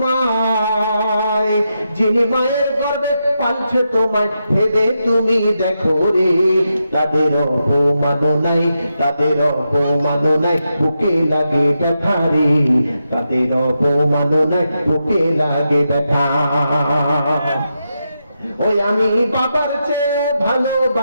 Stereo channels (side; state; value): both; inverted; correlation -0.86